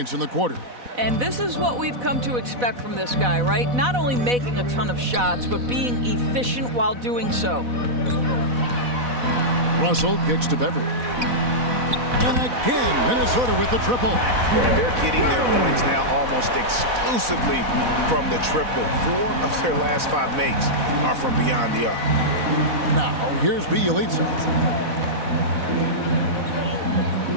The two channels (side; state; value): left; late; 4.1 ms